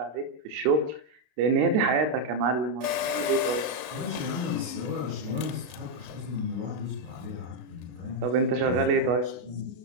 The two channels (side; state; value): left; late; 33 ms